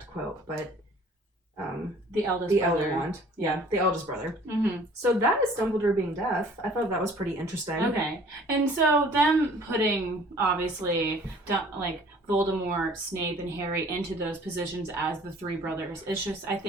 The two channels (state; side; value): normal; both; correlation 0.52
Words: quote, but the eldest brother. Elder wand. Yeah, the eldest brother. So that is Dumbledore being deaf. I thought that was pretty interesting. Okay. And so them putting, obviously, like Voldemort, Snape, and Harry into those positions as the three brothers, it's just, I